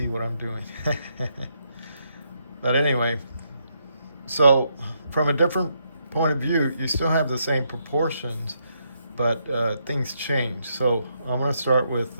what I'm doing. But anyway, so from a different point of view, you still have the same proportions, but things change. So I'm going to start with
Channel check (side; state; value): both; inverted; correlation -0.78